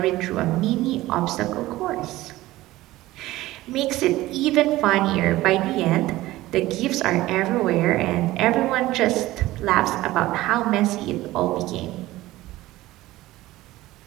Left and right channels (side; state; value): left; quieter; 17.1 dB